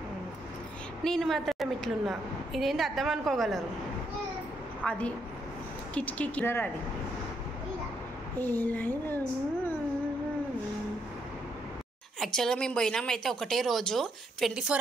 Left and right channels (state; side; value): normal; both; correlation 0.75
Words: నేను మాత్రం ఇట్లున్నా, ఇదేంటి అర్థం అనుకోగలరు. అది కిటికీ కిలర్. అది యాక్చువల్గా మేము పోయినామైతే ఒకటే రోజు, 24